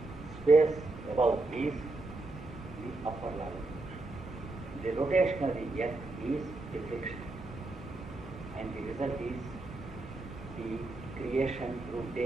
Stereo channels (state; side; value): quieter; left; 3.1 dB